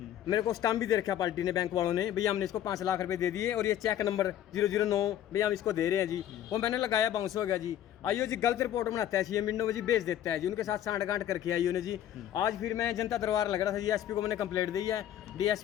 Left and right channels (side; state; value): right; quieter; 11.2 dB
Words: मेरे को स्टाम्प भी दे रखा पार्टी ने, बैंक वालों ने, भैया हमने इसको 5 लाख रुपए दे दिए और ये चेक नंबर 009 भैया हम इसको दे रहे हैं जी। वो मैंने लगाया, बाउंस हो गया जी। IO जी गलत रिपोर्ट बनाता है, CM विंडो में जी भेज देता है जी। उनके साथ सांठ-गांठ करके IO ने जी। आज फिर मैं जनता दरबार लग रहा था जी, SP को मैंने कंप्लेंट दी है।